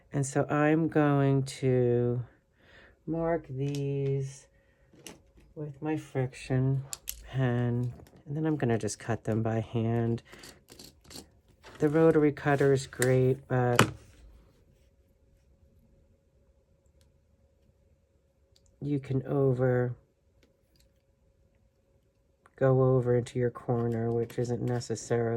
And so I'm going to mark these with my friction pen. And then I'm going to just cut them by hand. The rotary cutter is great, but you can go over into your corner, which isn't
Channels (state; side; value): identical; both; correlation 1.00